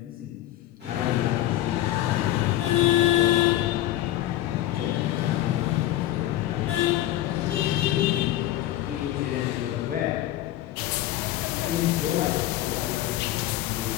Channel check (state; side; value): quieter; right; 14.2 dB